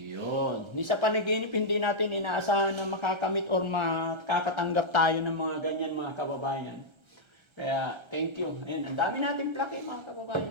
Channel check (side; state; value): left; late; 1.3 ms